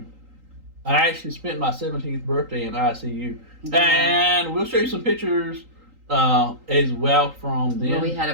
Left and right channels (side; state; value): left; late; 3.8 ms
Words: I actually spent my 17th birthday in ICU. Yeah. And we'll show you some pictures as well from then. Where we had a